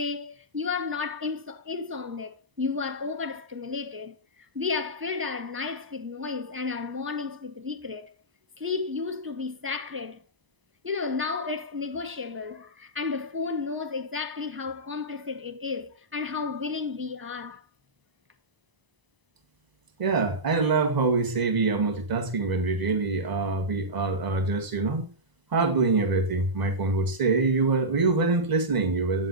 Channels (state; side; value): late; left; 1.0 ms